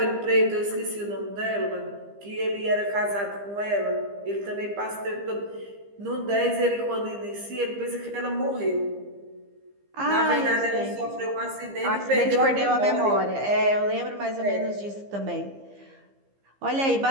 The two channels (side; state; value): left; late; 15 ms